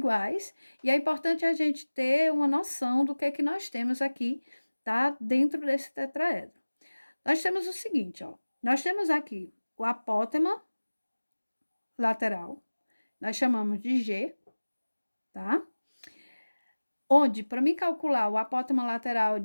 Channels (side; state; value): both; inverted; correlation -1.00